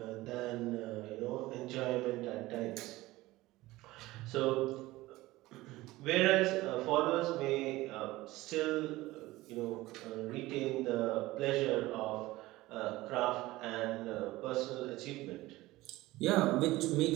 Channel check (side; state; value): left; quieter; 18.5 dB